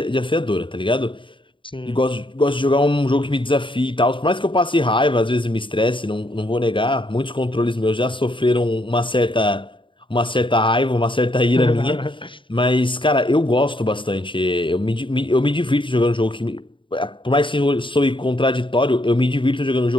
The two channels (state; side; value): late; right; 0.24 ms